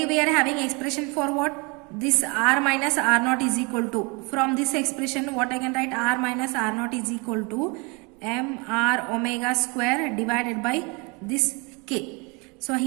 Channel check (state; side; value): quieter; left; 29.8 dB